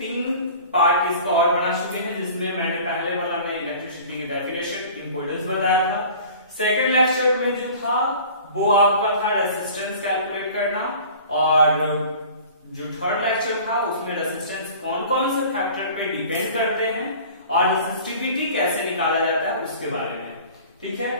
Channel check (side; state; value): both; inverted; correlation -0.43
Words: पार्ट इसका और बना चुके हैं, जिसमें मैंने पहले वाला में इलेक्ट्रिसिटी की डेफिनेशन इंपॉर्टेंस बताया था। सेकंड लेक्चर में जो था वो आपका था रेजिस्टेंस कैलकुलेट करना, और जो थर्ड लेक्चर था उसमें रेजिस्टेंस कौन कौन से फैक्टर पे डिपेंड करते हैं और रेजिस्टिविटी कैसे निकाला जाता है उसके बारे में। ठीक है,